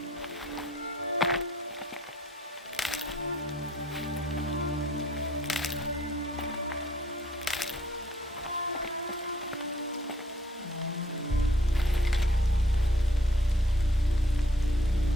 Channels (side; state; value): both; normal; correlation 0.64